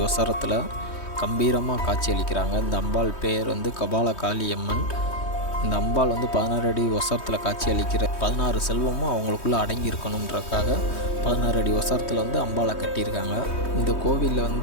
உசரத்தில் கம்பீரமாக காட்சி அளிக்கிறாங்க. இந்த அம்பாள் பெயர் கபால காளியம்மன். இந்த அம்பாள் 16 அடி உசரத்தில் காட்சி அளிக்கிற 16 செல்வமும் அவங்களுக்குள்ளே அடங்கி இருக்கணுன்றக்காக 16 அடி உசரத்தில் அம்பாளை கட்டியிருக்காங்க. இந்த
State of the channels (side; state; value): right; late; 3.2 ms